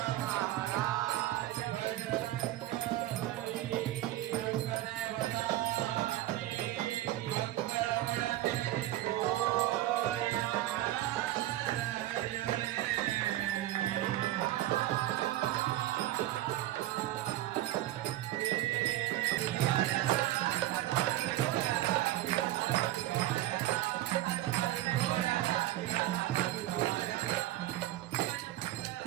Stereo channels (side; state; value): left; quieter; 15.0 dB